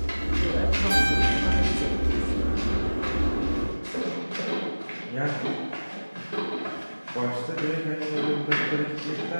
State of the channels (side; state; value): both; inverted; correlation -1.00